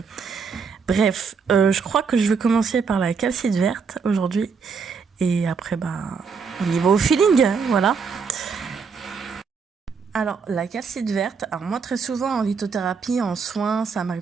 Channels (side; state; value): left; quieter; 5.6 dB